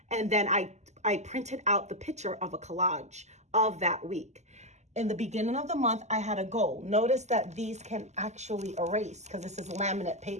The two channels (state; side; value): late; left; 0.33 ms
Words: and then I printed out the picture of a collage of that week. In the beginning of the month, I had a goal. Notice that these can actually erase because this is laminate